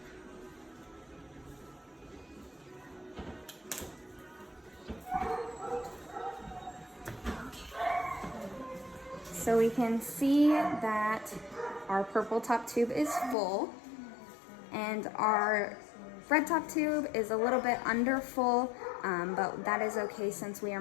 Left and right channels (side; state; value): right; drops out; at 13.4 s